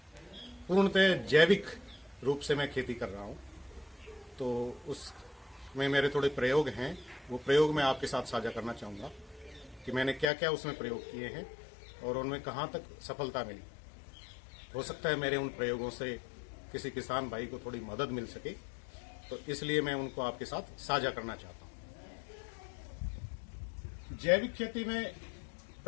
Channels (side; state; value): right; drops out; at 10.3 s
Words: पूर्णतः जैविक रूप से मैं खेती कर रहा हूँ, तो उसमें मेरे थोड़े प्रयोग हैं। वो प्रयोग मैं आपके साथ साझा करना चाहूँगा कि मैंने क्या क्या उसमें प्रयोग किए हैं और उनमें कहाँ तक सफलता मिली। हो सकता है मेरे उन प्रयोगों से किसी किसान भाई को थोड़ी मदद मिल सके, तो इसलिए मैं उनको आपके साथ साझा करना चाहता हूँ। जैविक खेती में